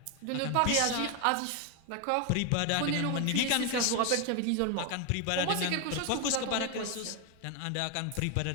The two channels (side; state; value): both; different; correlation 0.01